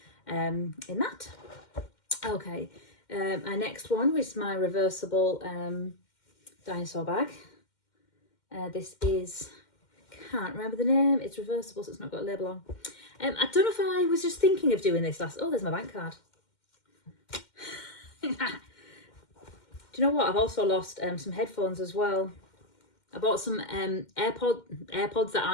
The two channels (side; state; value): right; late; 2.1 ms